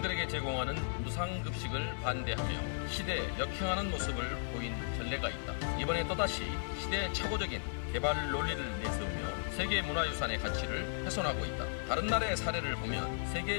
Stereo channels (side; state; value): right; silent; digital silence